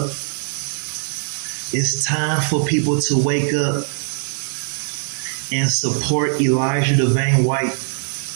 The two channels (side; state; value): left; silent; digital silence